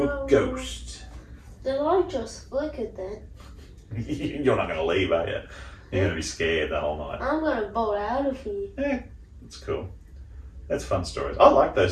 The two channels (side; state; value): both; identical; correlation 1.00